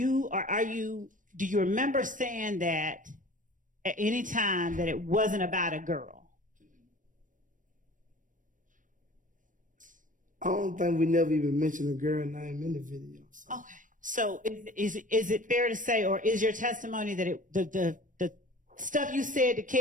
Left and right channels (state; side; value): late; left; 0.38 ms